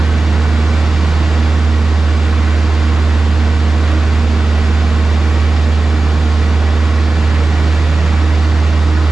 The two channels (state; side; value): quieter; left; 3.3 dB